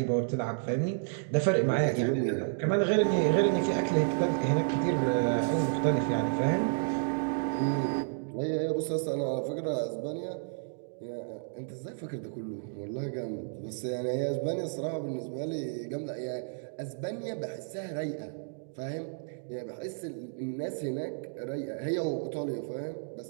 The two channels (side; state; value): left; silent; digital silence